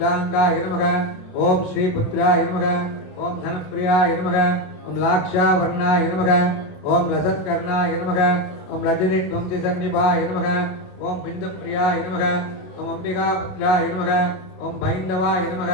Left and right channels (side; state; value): right; late; 27 ms